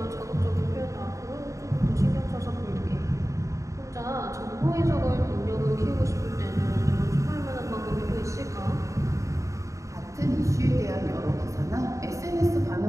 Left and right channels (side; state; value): left; late; 0.15 ms